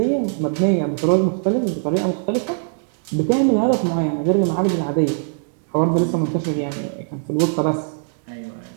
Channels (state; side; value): silent; left; digital silence